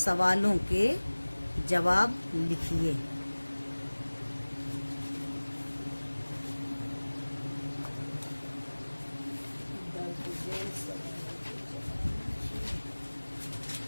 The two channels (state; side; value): inverted; both; correlation -1.00